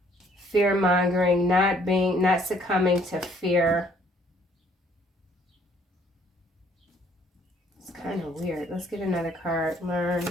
Fear-mongering, not succumbing to fear. It's kind of weird. Let's get another card. Learn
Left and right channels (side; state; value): both; normal; correlation 0.63